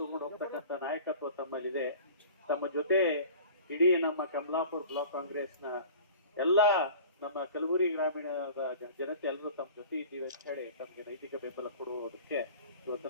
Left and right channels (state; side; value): inverted; both; correlation -0.42